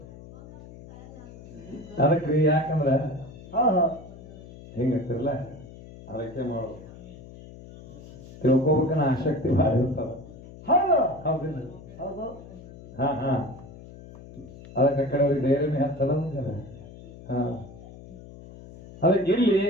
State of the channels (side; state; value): left; noise; hum, 17 dB below the sound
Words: ಅದಕ್ರಿ ಯಾಕಂದ್ರ ಹೌದು ಹೆಂಗತ್ತಿರಲ್ಲ ಅದಕ್ಕೆ ಮಾಡೋದು ತಿಳ್ಕೊಬೇಕನ್ನ ಆಸಕ್ತಿ ಭಾಳ ಇರ್ತಾವ. ಹೌದು ಹೌದಿಲ್ಲ? ಹೌದು ಅದಕ್ಕೆ ಕಡೆ ಅವ್ರಿಗೆ ಧೈರ್ಯನೇ ಹತ್ತದ. ಅದಕ್ಕೆ ಇಲ್ಲಿ